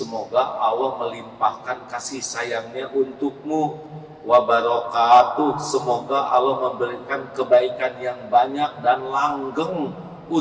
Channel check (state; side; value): identical; both; correlation 1.00